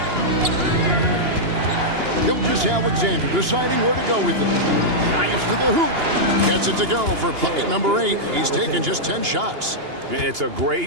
Gilgeous-Alexander deciding where to go with it. Drives to the hoop. Gets it to go for bucket number 8. He's taken just 10 shots. It's a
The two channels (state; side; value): late; left; 2.8 ms